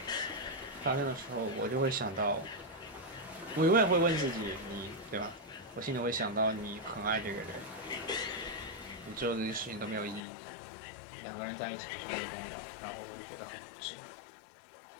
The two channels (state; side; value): drops out; right; at 10.2 s